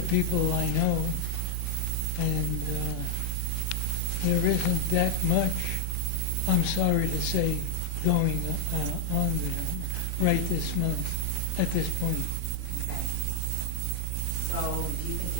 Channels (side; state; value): both; different; correlation 0.00